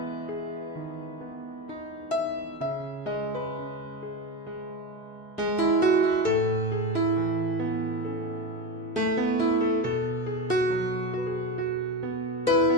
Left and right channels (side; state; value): both; normal; correlation 0.18